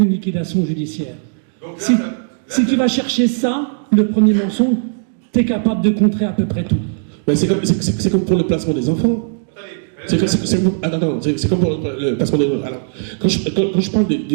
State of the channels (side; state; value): left; silent; digital silence